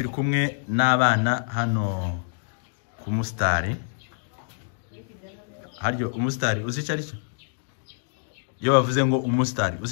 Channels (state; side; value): silent; right; digital silence